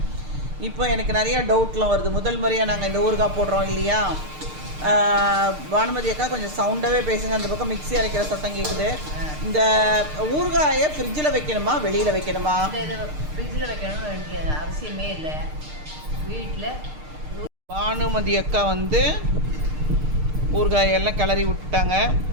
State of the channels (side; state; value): left; late; 6.6 ms